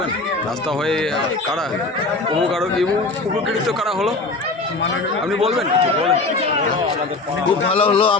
রাস্তা হয়ে কারা উপকৃত কারা হলো, আপনি বলবেন কিছু? বলেন। খুব ভালো হলো,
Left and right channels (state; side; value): quieter; right; 3.3 dB